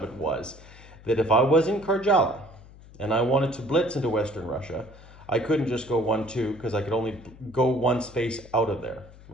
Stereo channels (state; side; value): noise; left; hum, 21 dB below the sound